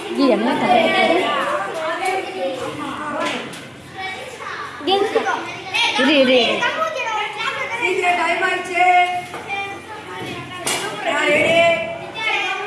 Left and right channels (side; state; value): both; identical; correlation 1.00